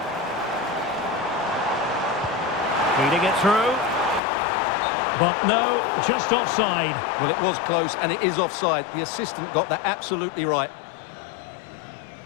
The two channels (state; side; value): drops out; right; at 4.2 s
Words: Feeding it through. But no, just offside. Well, it was close, and it is offside. The assistant got that absolutely right.